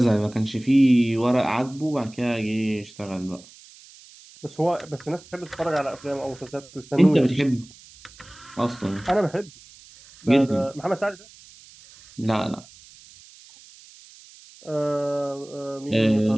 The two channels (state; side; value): noise; right; hiss, 23 dB below the sound